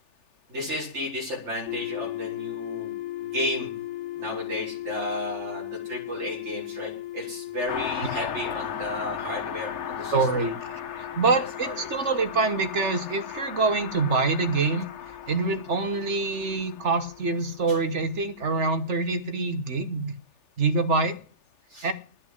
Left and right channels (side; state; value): left; late; 3.4 ms